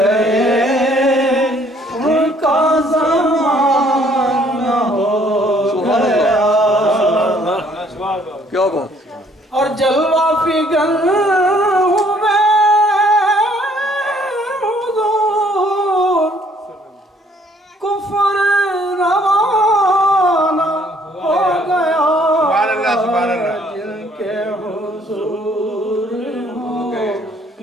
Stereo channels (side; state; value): both; normal; correlation 0.62